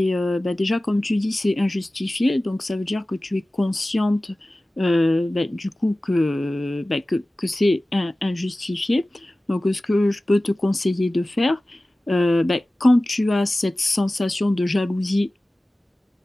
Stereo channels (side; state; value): both; normal; correlation 0.97